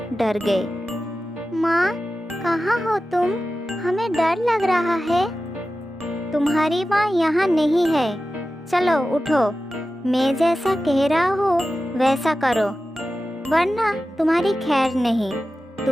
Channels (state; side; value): normal; both; correlation 0.94